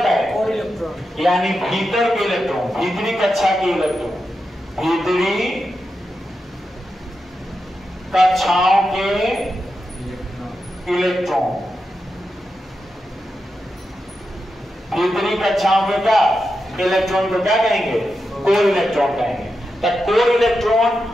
है, कोर इलेक्ट्रॉन। यानी भीतर के इलेक्ट्रॉन, भीतरी कक्षा के इलेक्ट्रॉन, भीतरी कक्षाओं के इलेक्ट्रॉन, भीतरी कक्षाओं के क्या इलेक्ट्रॉन को क्या कहेंगे, कोर इलेक्ट्रॉन कहेंगे। तो कोर इलेक्ट्रॉन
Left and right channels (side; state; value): both; normal; correlation 0.88